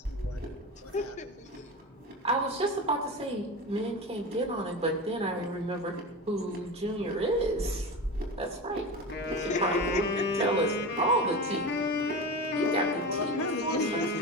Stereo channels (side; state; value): both; normal; correlation 0.26